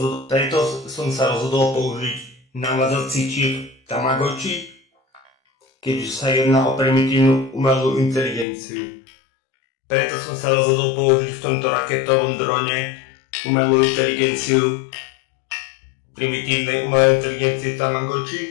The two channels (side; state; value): right; drops out; at 8.5 s